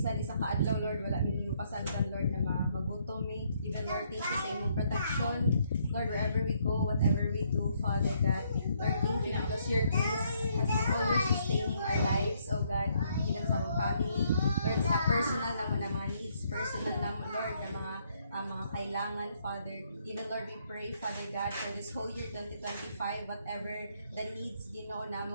isang kaadlaw, Lord, wala din mo pasagdan, Lord, na magutom me. Even, Lord, thank you sa inyong protection. Lord, wherever we go, whatever we do, Father God, Lord, thank you because your grace has been always sustaining our lives, oh God, even sa mga family, Lord, sa personal naman na mga needs, personal naman, Lord, na mga kailangan, Father. Even, Lord, we pray, Father God, for this whole year 2025, whatever the needs, Ginoo,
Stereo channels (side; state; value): both; inverted; correlation -0.71